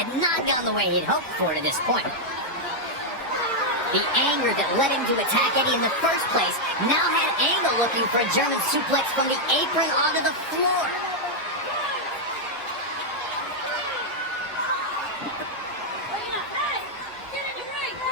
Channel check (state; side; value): normal; both; correlation -0.02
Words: not gone the way he'd hoped for to this point. The anger that led him to attack Eddie in the first place now had Angle looking for a German suplex from the apron onto the floor.